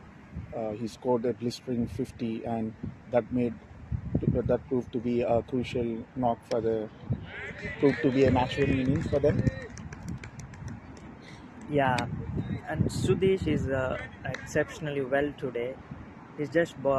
He scored a blistering 50, and that proved to be a crucial knock proved to be a match-winning innings for them. yeah, and Sudesh is exceptionally well today. He's just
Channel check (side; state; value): both; identical; correlation 1.00